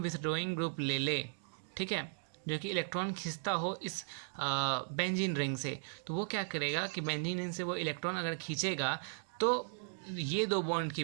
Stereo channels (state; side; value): silent; left; digital silence